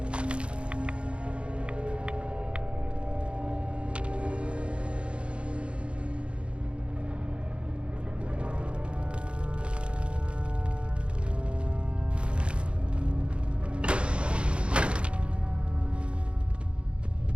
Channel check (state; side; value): late; left; 0.057 ms